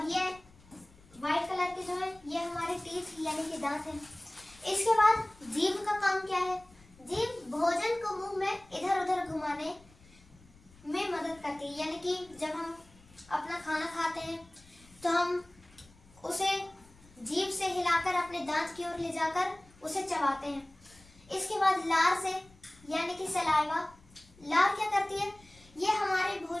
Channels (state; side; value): noise; left; rumble, 26 dB below the sound